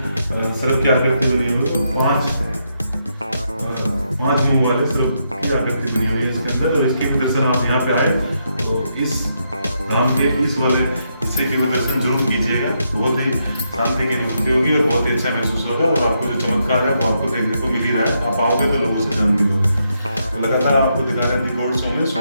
सर्प की आकृति बनी हुई है, 5 मुंह वाले सर्प की आकृति बनी हुई है इसके अंदर। और इसके दर्शन आप यहाँ पे आए तो इस धाम के इस वाले हिस्से के भी दर्शन जरूर कीजिएगा। बहुत ही शांति की अनुभूति होगी और बहुत ही अच्छा महसूस होगा और आपको जो चमत्कार है वो आपको देखने को मिल ही रहा है। आप आओगे तो लोगों से जान भी लोगे। तो लगातार आपको दिखा रहे हैं गोल्ड शो में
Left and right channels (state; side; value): inverted; both; correlation -0.79